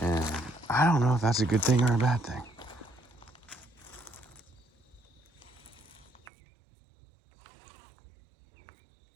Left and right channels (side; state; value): left; drops out; at 6.2 s